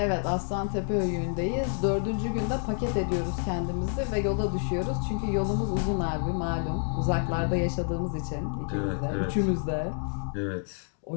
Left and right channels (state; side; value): silent; right; 59 dB below the other